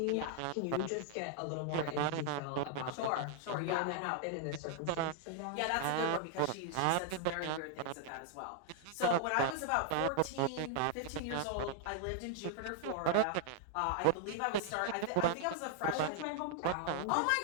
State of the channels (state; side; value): different; both; correlation -0.01